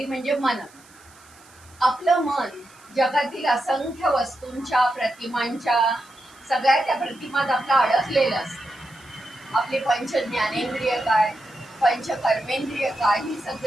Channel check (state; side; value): noise; right; hiss, 26 dB below the sound